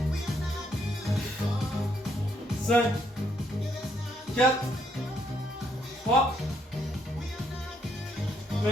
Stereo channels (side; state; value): both; normal; correlation 0.73